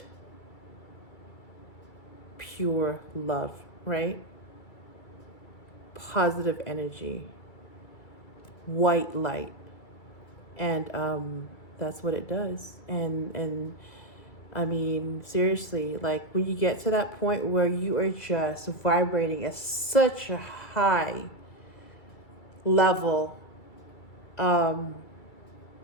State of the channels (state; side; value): late; right; 2.3 ms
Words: pure love, right? Positive energy, white light. And that's what it does. And I mean, seriously, like when you get to that point where you are just vibrating at such a high level,